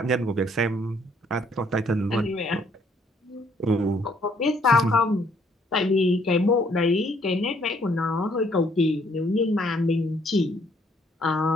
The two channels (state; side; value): normal; both; correlation 0.66